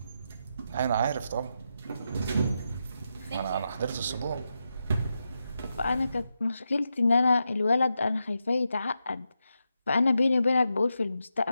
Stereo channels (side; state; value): both; inverted; correlation -0.87